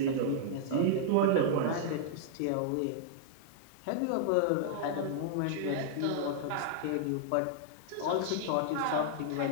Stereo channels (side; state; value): both; different; correlation -0.01